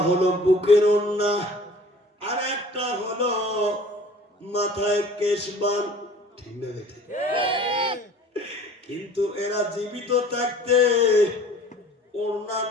হলো বুকের ওড়না আর একটা হলো মাথায় কেশবান, ঠিক না বেটা? কিন্তু এরা জীবিত থাকতে ওড়না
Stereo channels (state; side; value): normal; both; correlation 0.48